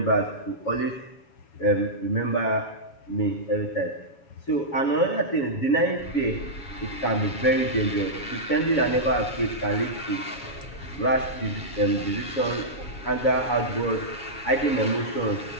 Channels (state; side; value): late; right; 7.2 ms